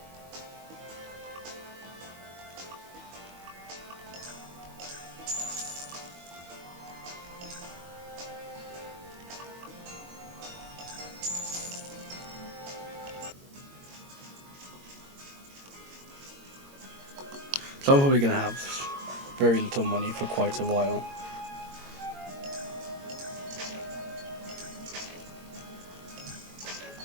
So I'm probably going to have very little money for quite a while.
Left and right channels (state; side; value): late; left; 22 ms